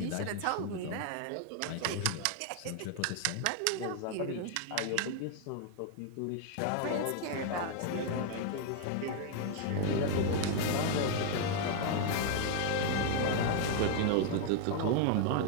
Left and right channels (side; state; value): both; different; correlation 0.00